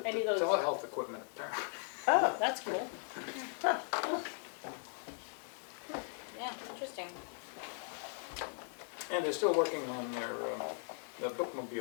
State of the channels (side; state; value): right; silent; 52 dB below the other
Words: Any of those- telehealth equipment apparently. Oh, That's cool. Yeah, interesting. And they're still working on their, the